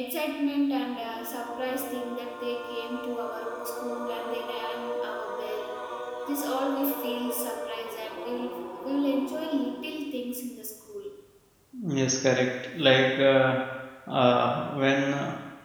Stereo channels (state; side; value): identical; both; correlation 1.00